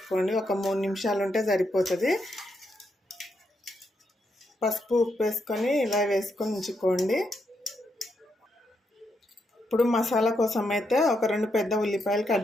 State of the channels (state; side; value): normal; both; correlation 0.81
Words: ఒక 3 నిమిషాలు ఉంటే సరిపోతుంది. పసుపు ఉప్పు వేసుకొని ఇలా వేసుకొని ఉంచుకోండి. ఇప్పుడు మసాలా కోసం అయితే ఒక 2 పెద్ద ఉల్లిపాయలు